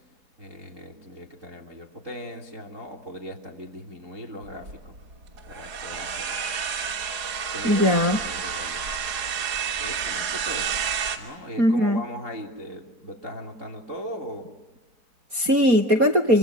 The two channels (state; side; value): late; left; 4.2 ms